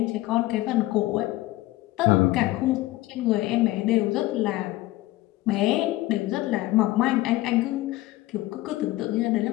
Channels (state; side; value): quieter; right; 17.6 dB